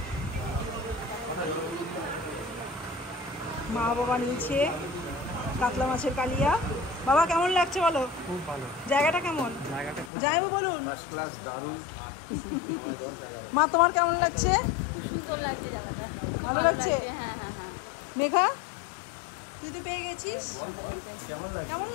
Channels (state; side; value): drops out; right; at 10.1 s